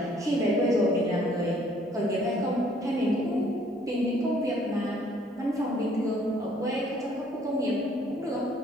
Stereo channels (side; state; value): both; normal; correlation 0.61